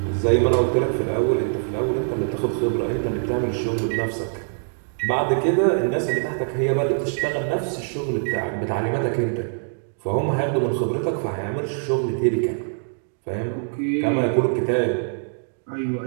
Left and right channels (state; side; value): silent; left; digital silence